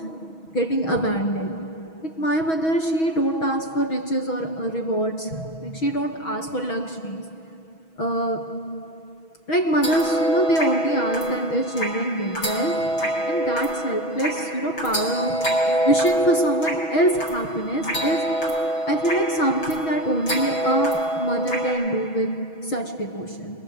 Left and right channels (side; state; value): right; late; 6.2 ms